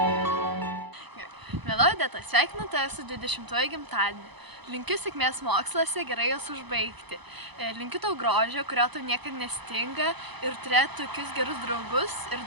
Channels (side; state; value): left; late; 1.0 ms